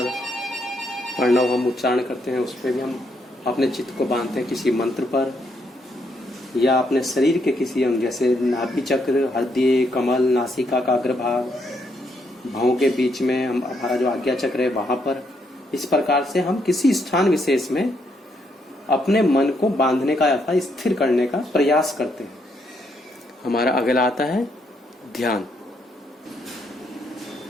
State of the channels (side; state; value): both; normal; correlation 0.75